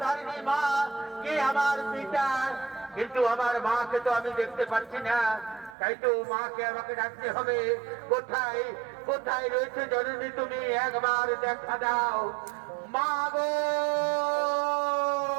মা, কে আমার পিতা। কিন্তু আমার মাকে তো আমি দেখতে পাচ্ছি না। তাই তো মাকে আমাকে ডাকতে হবে। কোথায় কোথায় রয়েছে জননী, তুমি একবার দেখা দাও মা গো।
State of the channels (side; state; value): left; drops out; at 5.8 s